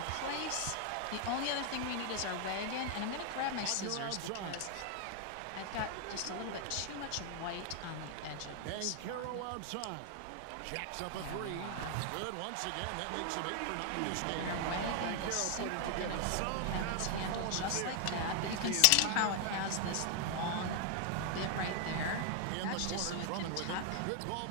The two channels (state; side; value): different; both; correlation 0.00